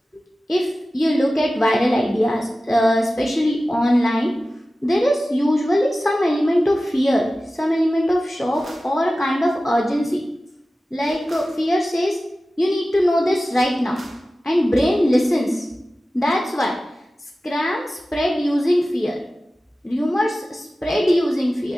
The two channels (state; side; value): normal; both; correlation 0.95